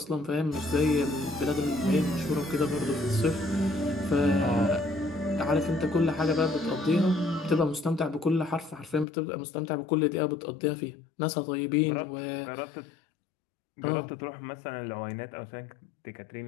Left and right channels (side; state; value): right; drops out; at 9.1 s